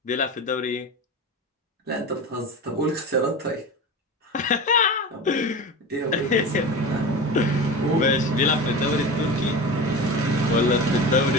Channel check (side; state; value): both; normal; correlation 0.29